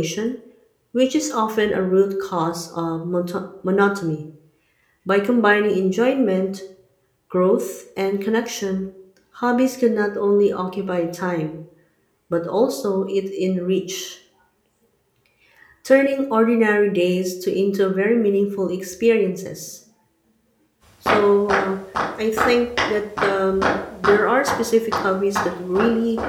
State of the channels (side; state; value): both; identical; correlation 1.00